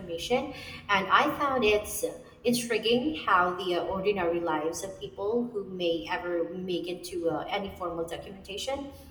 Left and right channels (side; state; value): both; identical; correlation 1.00